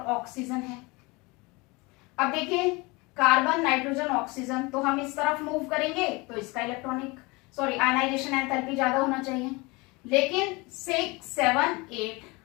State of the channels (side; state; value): right; quieter; 25.3 dB